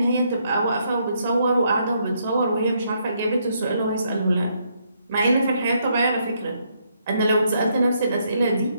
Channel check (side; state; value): both; inverted; correlation -0.74